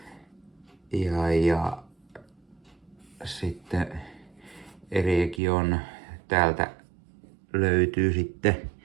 sitten Eregion täältä löytyy sitten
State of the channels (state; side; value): drops out; left; at 5.4 s